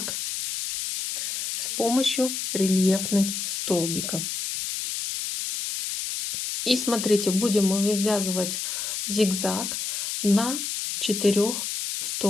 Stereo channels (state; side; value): noise; left; hiss, 4 dB below the sound